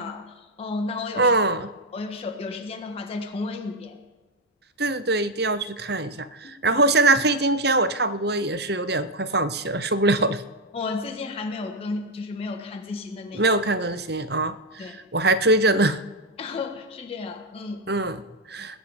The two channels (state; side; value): normal; both; correlation 0.04